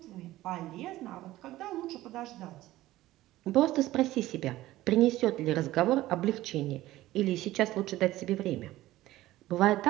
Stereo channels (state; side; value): quieter; left; 16.1 dB